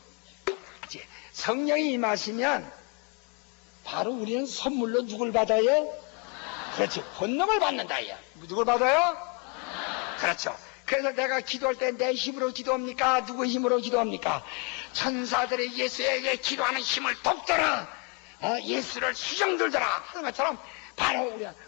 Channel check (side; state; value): right; quieter; 32.8 dB